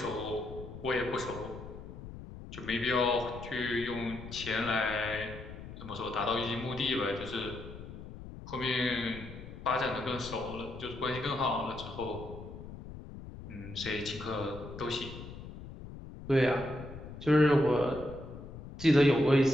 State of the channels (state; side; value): noise; left; rumble, 12 dB below the sound